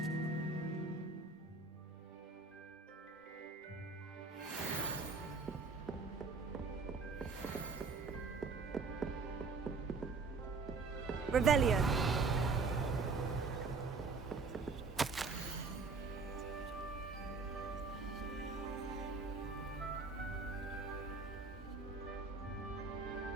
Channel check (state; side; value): quieter; left; 4.3 dB